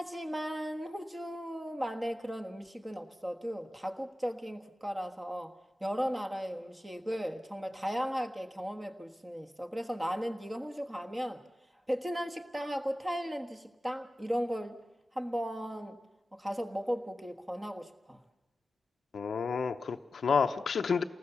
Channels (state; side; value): normal; both; correlation 0.94